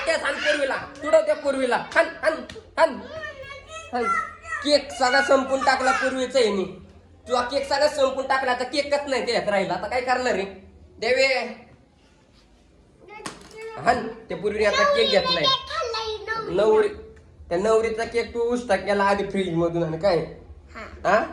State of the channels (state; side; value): identical; both; correlation 1.00